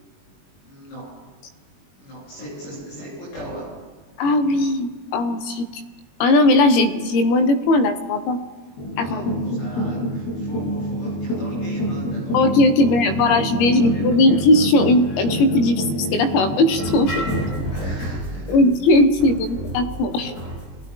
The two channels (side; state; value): right; late; 21 ms